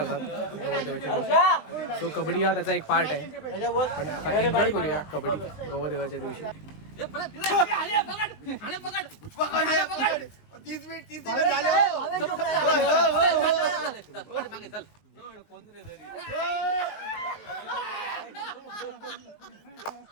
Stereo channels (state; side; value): late; right; 20 ms